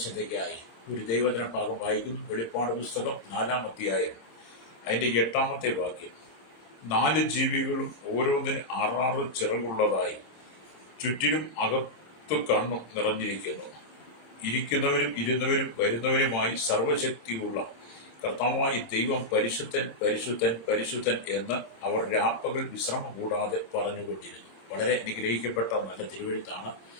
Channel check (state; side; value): late; right; 26 ms